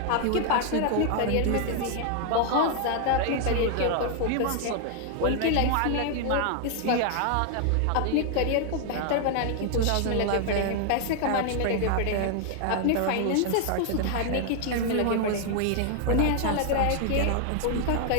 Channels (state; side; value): different; both; correlation 0.00